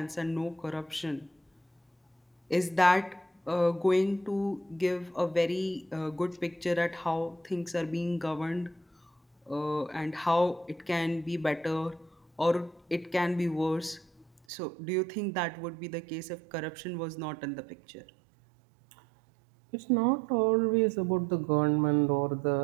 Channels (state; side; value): drops out; left; at 14.4 s